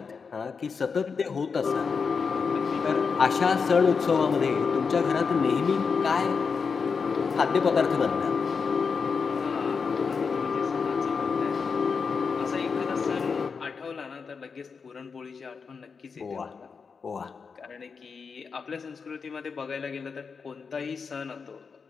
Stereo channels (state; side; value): quieter; right; 5.4 dB